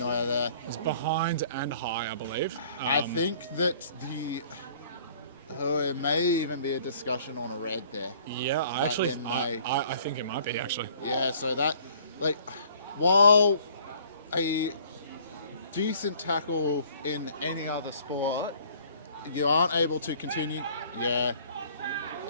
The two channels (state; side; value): inverted; both; correlation -0.55